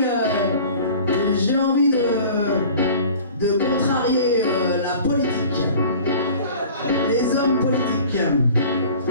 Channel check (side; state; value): both; inverted; correlation -0.44